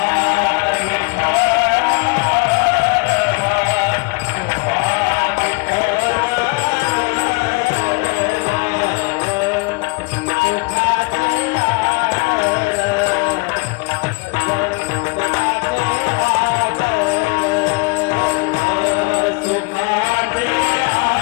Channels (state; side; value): quieter; right; 30.4 dB